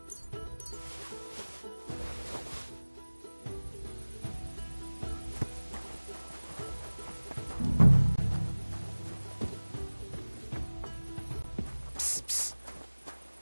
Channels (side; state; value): both; inverted; correlation -1.00